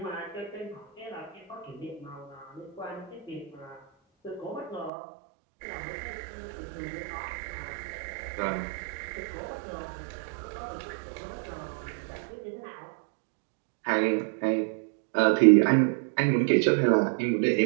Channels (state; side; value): drops out; left; at 4.9 s